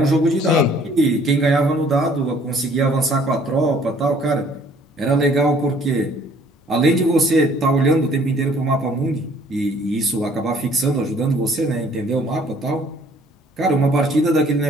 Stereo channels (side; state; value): both; normal; correlation 0.58